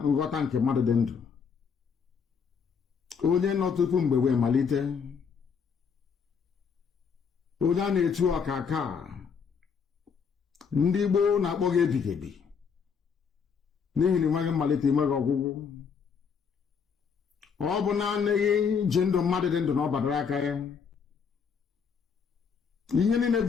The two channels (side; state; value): right; quieter; 6.2 dB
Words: nghọta nke mmadụ dị ndụ. Onye nọ tupu mgbe wee malite. Onye a na-etu ọkaka, ndị Igbo na-akpọ gị ebighị ebi, n'ihi na enweghị mmalite, enweghị ọgwụgwụ. Ọ bụ naanị gị ji ndụ mmadụ dị ndụ na ọ badara aka ya. Ihe niile